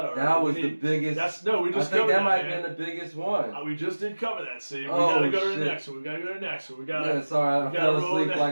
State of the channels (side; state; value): both; inverted; correlation -1.00